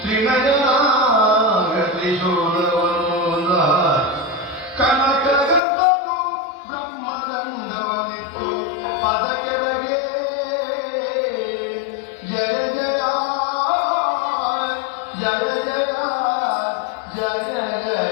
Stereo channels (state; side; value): drops out; right; at 5.6 s